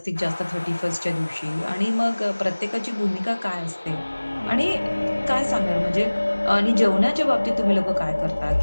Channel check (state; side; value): inverted; both; correlation -1.00